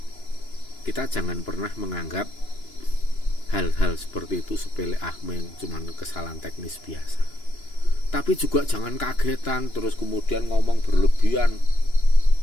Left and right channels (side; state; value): right; late; 2.9 ms